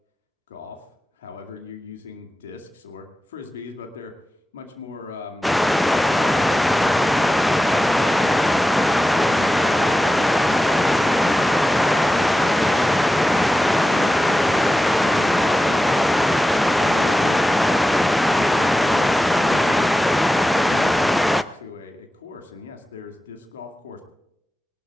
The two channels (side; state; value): both; normal; correlation 0.94